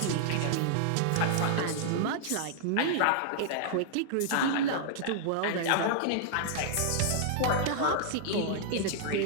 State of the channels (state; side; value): different; both; correlation -0.01